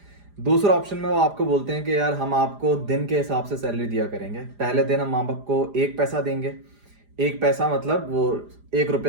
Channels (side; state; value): left; late; 4.9 ms